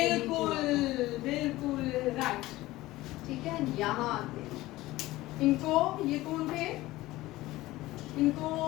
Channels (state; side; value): quieter; right; 17.8 dB